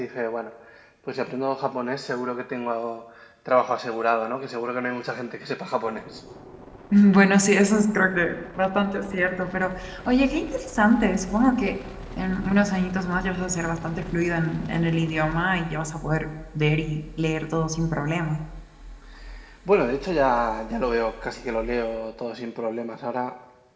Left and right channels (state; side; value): identical; both; correlation 1.00